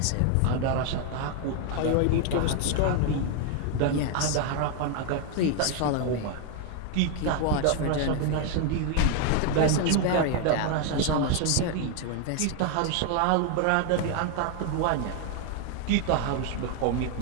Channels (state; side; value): different; both; correlation 0.00